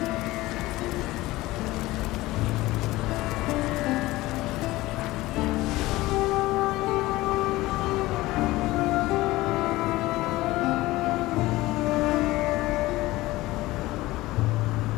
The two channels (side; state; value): right; quieter; 18.7 dB